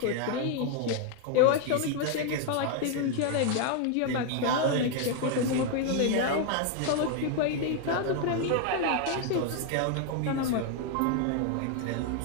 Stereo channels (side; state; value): both; different; correlation 0.00